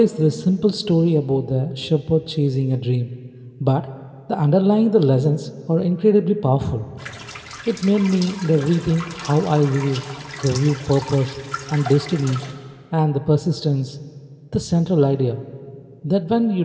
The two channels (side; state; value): both; identical; correlation 1.00